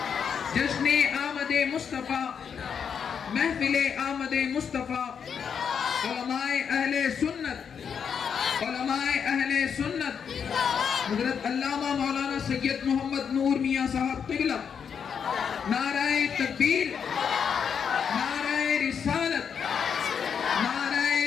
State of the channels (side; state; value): right; quieter; 7.1 dB